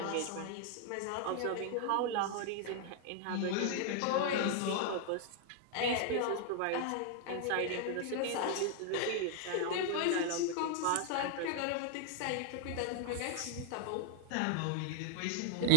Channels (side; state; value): both; different; correlation -0.01